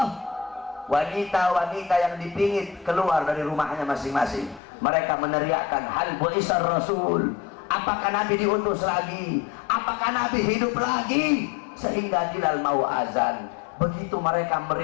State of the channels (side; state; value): right; drops out; at 4.6 s